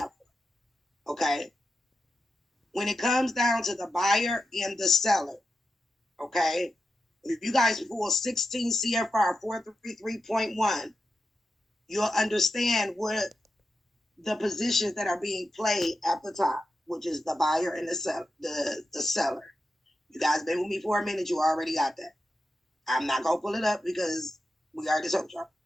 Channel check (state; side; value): normal; both; correlation 0.88